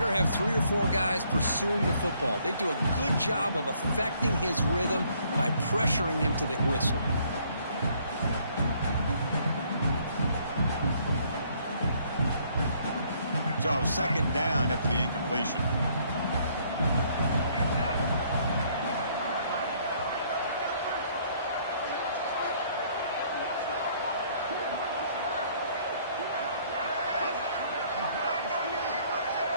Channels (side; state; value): both; inverted; correlation -0.65